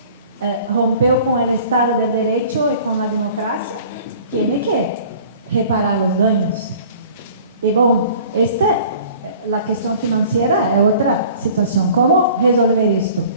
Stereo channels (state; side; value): inverted; both; correlation -0.48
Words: rompeu com o Estado de Direito e com a democracia, tem que reparar os danos. E bom, a questão financeira é outra situação. Como resolver isto?